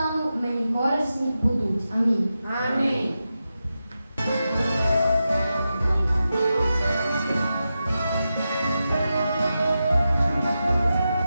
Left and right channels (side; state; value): both; inverted; correlation -0.90